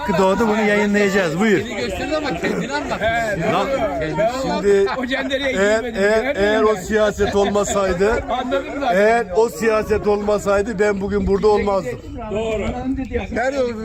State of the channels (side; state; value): both; identical; correlation 1.00